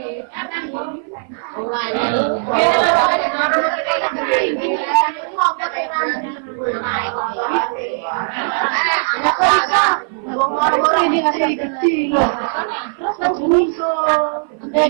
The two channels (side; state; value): left; silent; 57 dB below the other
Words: ini ngasih kecil loh. Terus langsung iso.